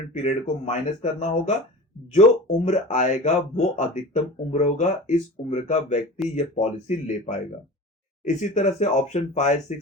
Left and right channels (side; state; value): both; normal; correlation 0.35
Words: पीरियड को माइनस करना होगा। जो उम्र आएगा वो अधिकतम उम्र होगा, इस उम्र का व्यक्ति यह पॉलिसी ले पाएगा। इसी तरह से ऑप्शन 5 6